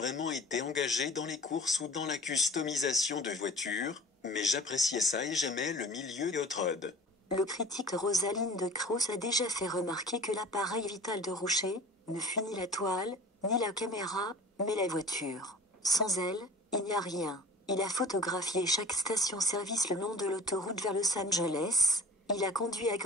été engagé dans les courses ou dans la customisation de voitures, mais j'appréciais ça et j'aimais le milieu hot rod. Le critique Rosaline de Cruz a déjà fait remarquer que l'appareil vital de Rouchet ne fut ni la toile, ni la caméra, mais la voiture. Sans elle, il n'y a rien. Il a photographié chaque station-service le long de l'autoroute vers Los Angeles. Il a conduit à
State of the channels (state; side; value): normal; both; correlation 0.43